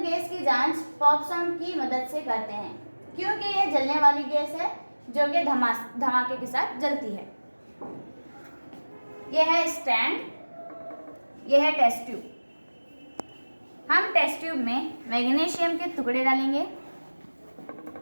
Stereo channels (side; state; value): both; inverted; correlation -1.00